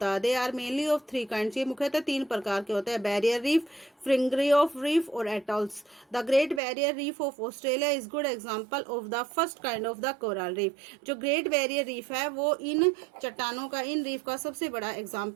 है। They are mainly of 3 kinds, ये मुख्यतः 3 प्रकार के होते हैं, barrier reef, fringing of reef और atolls. The Great Barrier Reef of Australia is good example of the first kind of the coral reef. जो ग्रेट बैरियर रीफ है वो इन चट्टानों का, इन रीफ का सबसे बड़ा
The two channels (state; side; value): drops out; left; at 6.6 s